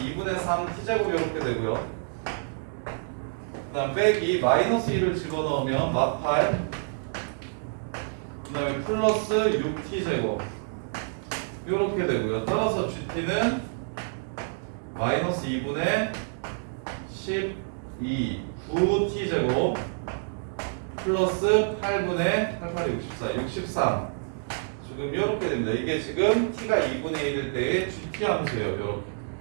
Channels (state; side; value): silent; left; digital silence